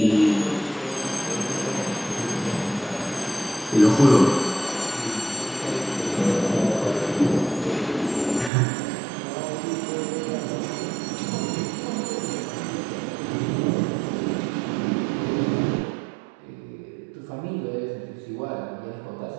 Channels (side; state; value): left; drops out; at 8.5 s